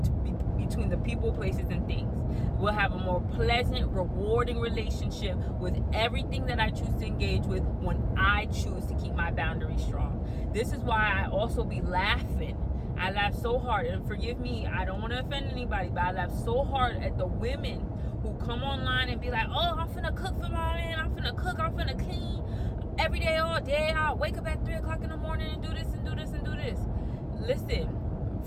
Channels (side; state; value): both; identical; correlation 1.00